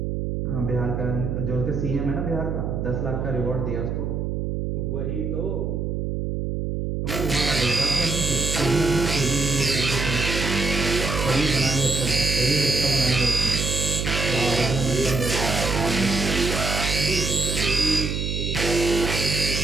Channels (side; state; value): right; noise; hum, 2 dB below the sound